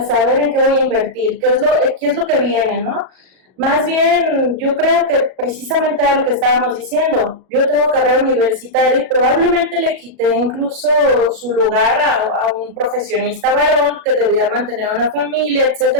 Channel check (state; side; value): late; left; 37 ms